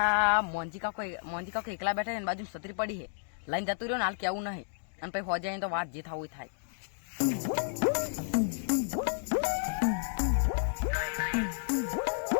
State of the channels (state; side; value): silent; right; digital silence